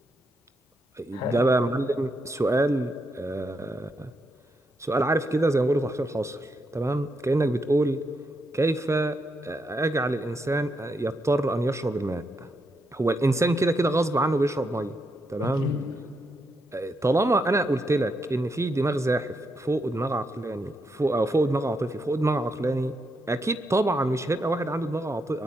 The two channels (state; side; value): normal; both; correlation 0.81